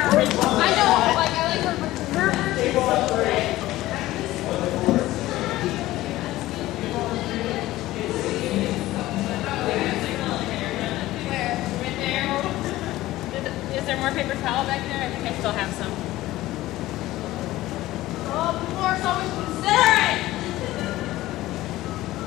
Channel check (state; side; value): quieter; right; 16.5 dB